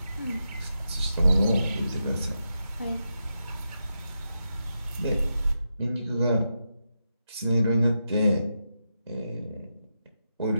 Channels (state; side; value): inverted; both; correlation -0.87